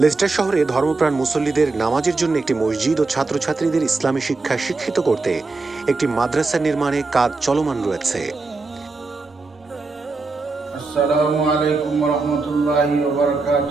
Leicester শহরে ধর্মপ্রাণ মুসল্লিদের নামাজের জন্য একটি মসজিদ ও ছাত্রছাত্রীদের ইসলামী শিক্ষায় শিক্ষিত করতে একটি মাদ্রাসা নির্মাণে কাজ চলমান রয়েছে। আসসালামু আলাইকুম ওয়া রাহমাতুল্লাহি ওয়া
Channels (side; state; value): left; quieter; 3.7 dB